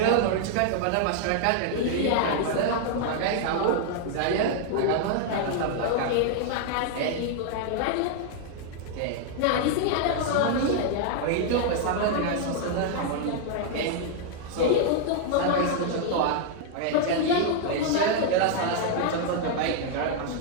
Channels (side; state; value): both; different; correlation 0.00